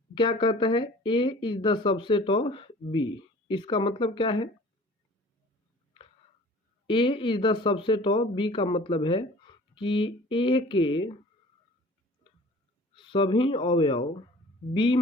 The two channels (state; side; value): normal; both; correlation 0.47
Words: क्या कहता है? A is the subset of B। इसका मतलब क्या है? A is the subset of B का मतलब है कि A के सभी अवयव B